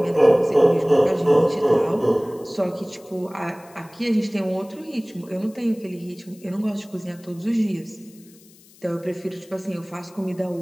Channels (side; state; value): left; noise; hiss, 26 dB below the sound